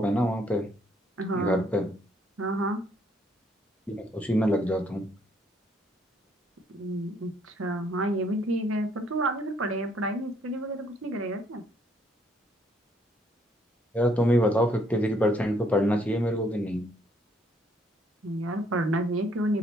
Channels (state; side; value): normal; both; correlation 0.67